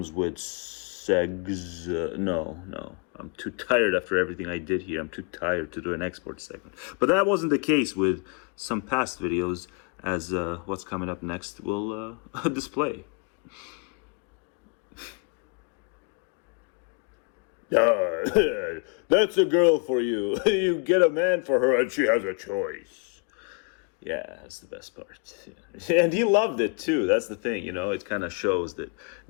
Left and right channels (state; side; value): quieter; right; 35.6 dB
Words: with segs. No. I'm too tired after everything I did here. I'm too tired to do an export segment. But that wasn't the case with some past videos, as what's coming up next will display. That's a girl for you. You get a man for her and she has a choice. Yeah, that's the best part. Yeah. And he loved it too. That's the thing, it kind of shows that